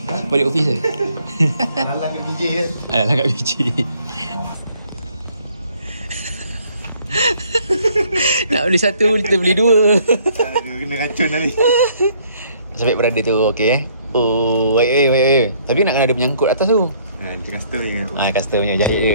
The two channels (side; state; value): both; inverted; correlation -0.63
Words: Alang kat BJ kan? Alang kat BJ. Nak beli satu, kita beli dua. Dia kena racun tadi. Sampai berada tu, okey. Oh, wait. Tapi nak kena ada menyangkut atas tu. Macam custom ni. Custom punya, jahit